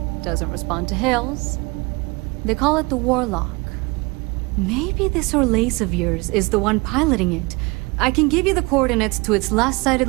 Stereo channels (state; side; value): quieter; left; 26.0 dB